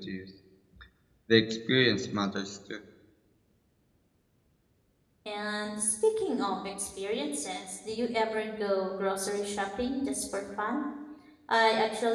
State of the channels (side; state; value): both; identical; correlation 1.00